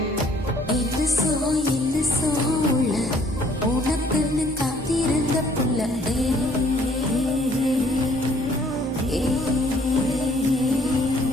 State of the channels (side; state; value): both; normal; correlation 0.60